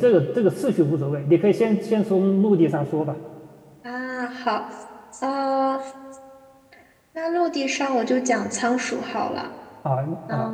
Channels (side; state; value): both; identical; correlation 1.00